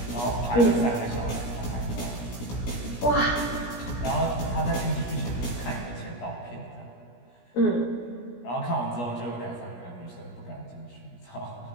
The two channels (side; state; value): right; late; 17 ms